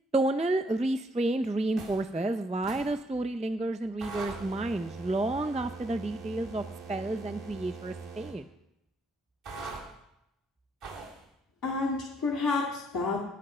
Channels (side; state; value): both; normal; correlation 0.72